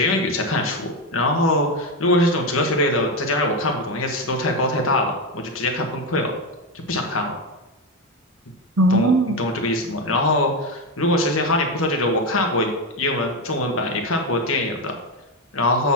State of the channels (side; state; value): both; normal; correlation 0.11